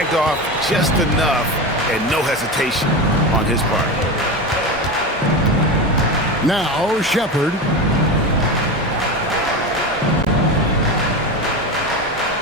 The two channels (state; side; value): normal; both; correlation 0.22